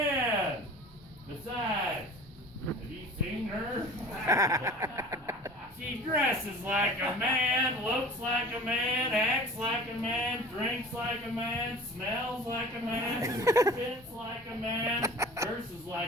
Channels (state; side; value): normal; both; correlation 0.41